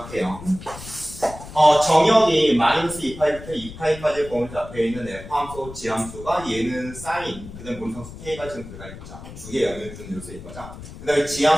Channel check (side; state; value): left; noise; rumble, 14 dB below the sound